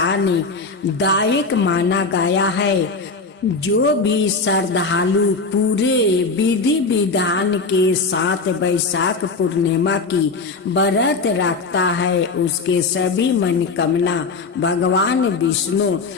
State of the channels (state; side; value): quieter; right; 4.1 dB